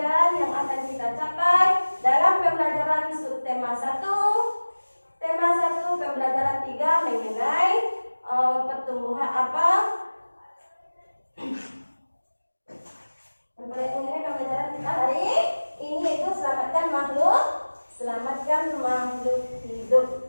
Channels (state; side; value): inverted; both; correlation -1.00